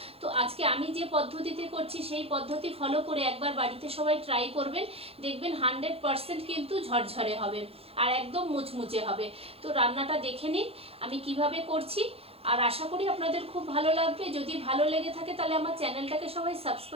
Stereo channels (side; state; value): left; late; 0.28 ms